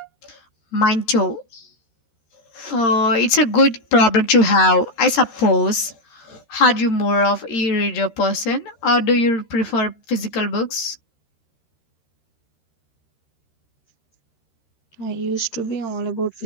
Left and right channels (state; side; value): late; right; 13 ms